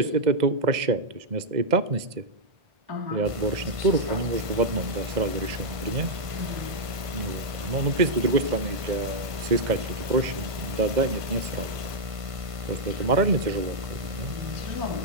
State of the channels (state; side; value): late; left; 1.5 ms